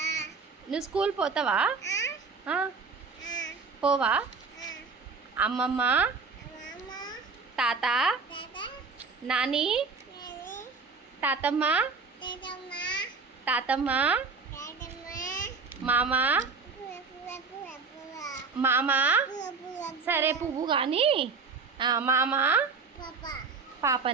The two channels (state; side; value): quieter; left; 4.7 dB